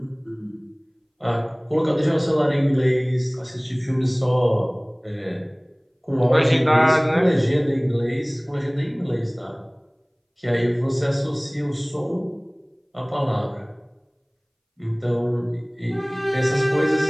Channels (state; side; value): identical; both; correlation 1.00